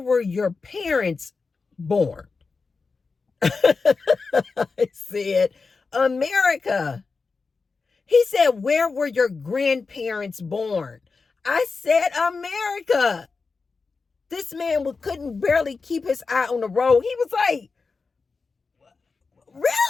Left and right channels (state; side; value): quieter; right; 4.5 dB